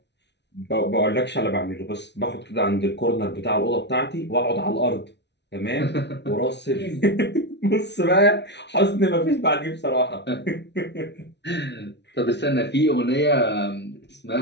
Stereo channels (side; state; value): right; late; 0.50 ms